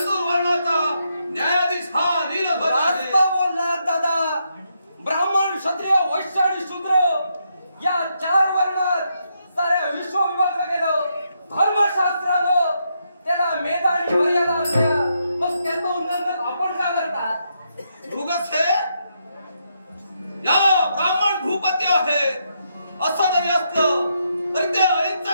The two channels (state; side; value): inverted; both; correlation -0.79